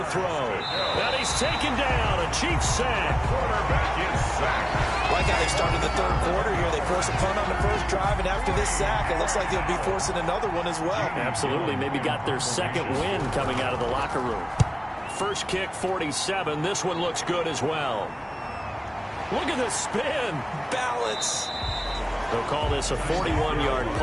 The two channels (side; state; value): both; identical; correlation 1.00